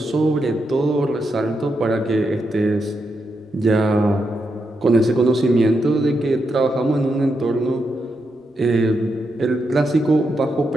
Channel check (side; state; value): both; normal; correlation 0.84